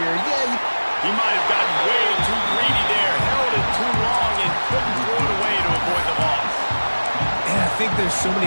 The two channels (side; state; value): both; inverted; correlation -1.00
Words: year. Yeah, he might have gotten way too greedy there, held it too long, and couldn't throw it away to avoid the loss. And I think there's so many